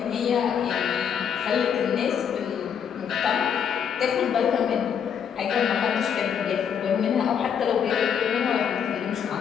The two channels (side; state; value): right; quieter; 7.7 dB